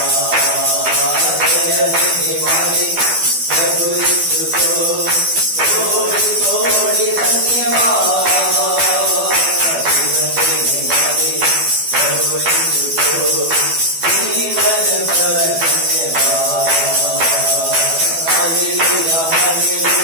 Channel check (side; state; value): left; late; 12 ms